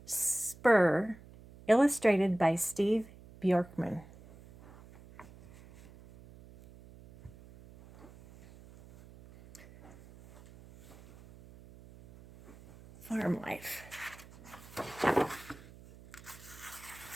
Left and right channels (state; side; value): noise; right; hum, 21 dB below the sound